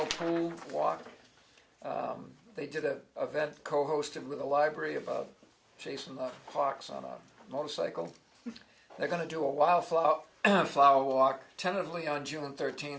pool walk. They did an event co-hosted with the library about chasing the hawks on a motorcycle. They're going to do a wildflower flower walk, tentatively on June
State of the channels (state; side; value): identical; both; correlation 1.00